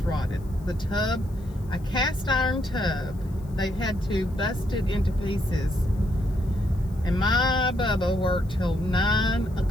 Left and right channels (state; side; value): noise; left; hiss, 29 dB below the sound